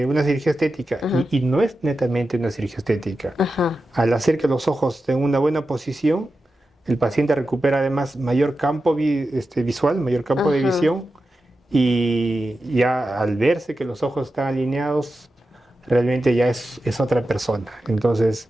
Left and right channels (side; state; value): both; normal; correlation 0.91